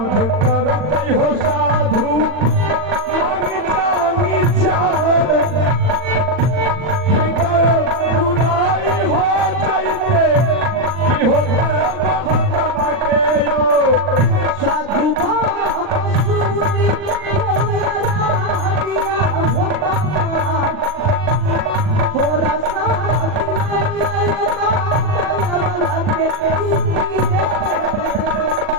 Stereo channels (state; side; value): late; left; 40 ms